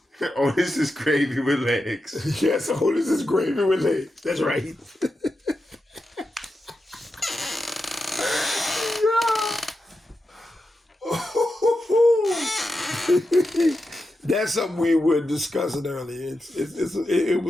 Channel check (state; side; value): normal; both; correlation 0.89